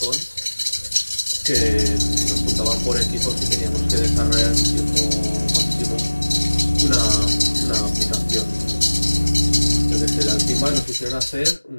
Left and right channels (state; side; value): inverted; both; correlation -1.00